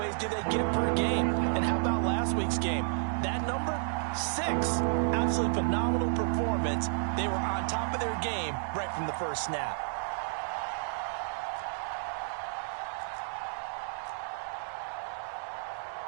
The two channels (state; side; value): silent; left; digital silence